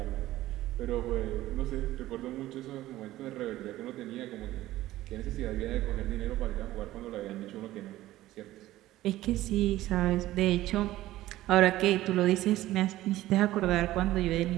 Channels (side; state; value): left; quieter; 15.6 dB